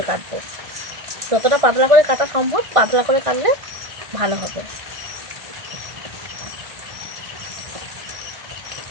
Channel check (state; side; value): late; left; 1.5 ms